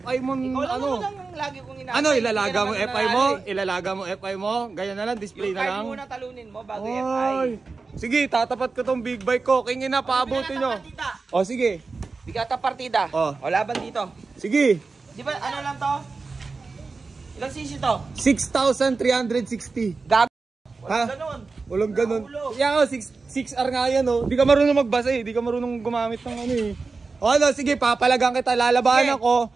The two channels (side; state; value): left; quieter; 4.2 dB